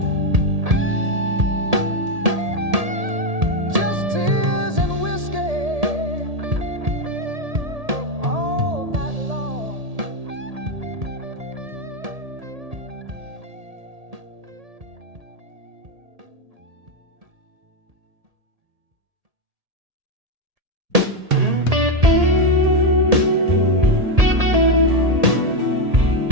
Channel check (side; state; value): left; late; 1.7 ms